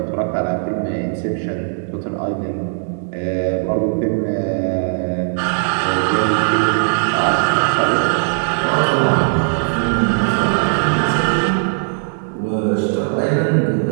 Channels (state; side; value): silent; left; digital silence